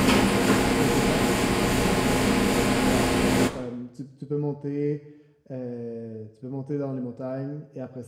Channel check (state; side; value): identical; both; correlation 1.00